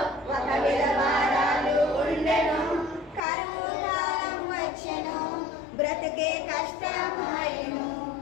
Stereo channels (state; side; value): drops out; right; at 3.2 s